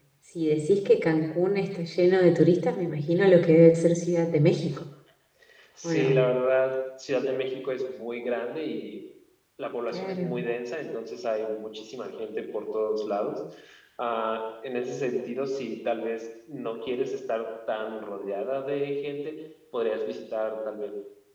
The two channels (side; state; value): both; identical; correlation 1.00